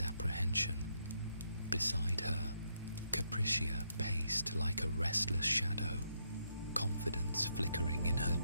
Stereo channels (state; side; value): inverted; both; correlation -0.77